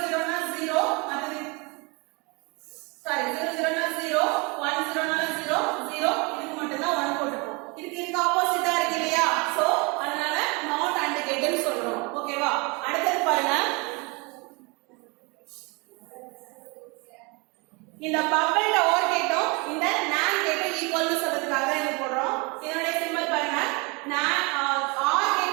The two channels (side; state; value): left; quieter; 29.0 dB